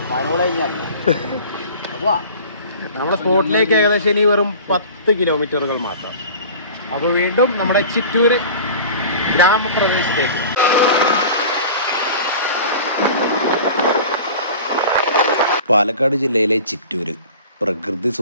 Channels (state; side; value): inverted; both; correlation -0.40